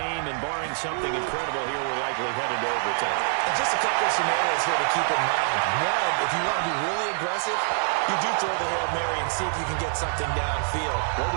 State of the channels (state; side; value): silent; left; 61 dB below the other